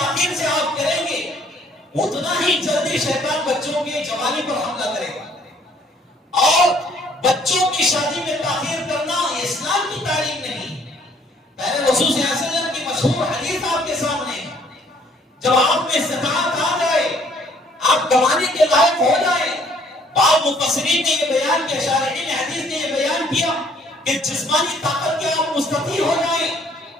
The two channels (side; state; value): both; normal; correlation 0.61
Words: سے آپ کریں گے اتنا ہی جلدی شیطان بچوں کی جوانی پر حملہ کرے گا. اور بچوں کی شادی میں تاخیر کرنا یہ اسلام کی تعلیم نہیں. پہلے رسول صلی اللہ علیہ وسلم کی مشہور حدیث آپ کے سامنے ہے. جب آپ میں استطاعت آ جائے، آپ کمانے کے لائق ہو جائے، بعض مفسرین نے یہ بیان کیا، شارحین حدیث نے یہ بیان کیا کہ جسمانی طاقت کے آپ مستطیع ہو جائیں